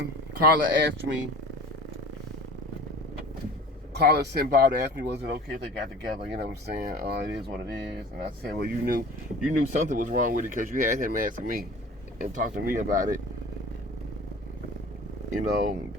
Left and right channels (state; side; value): normal; both; correlation 0.42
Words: Carla sent Bob to ask me, was it okay if they got together? You know what I'm saying? It is what it is. And I said, well, you knew something was wrong with it because you had him ask me and talk to me about it. You know,